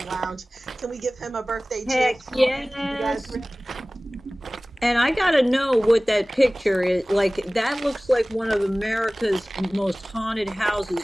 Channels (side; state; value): both; normal; correlation 0.98